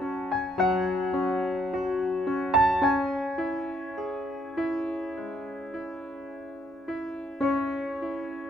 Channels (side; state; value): both; normal; correlation 0.71